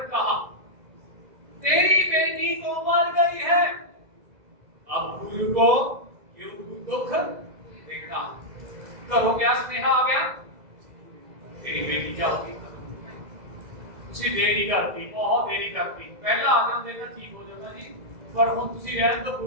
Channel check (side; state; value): left; late; 2.0 ms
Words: कहा, तेरी बेटी तो मर गई है, अब गुरु को क्यों दुख देखना। करो क्या स्नेहा आ गया, तेरी बेटी क्या होगी, उसी देरी करती, बहुत देरी करती, पहला आदम देना ठीक हो जाता जी, पर हम तुसी रहन तो